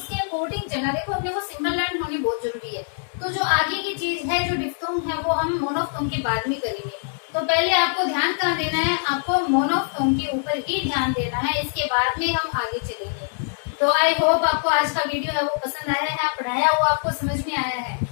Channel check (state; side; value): silent; right; 63 dB below the other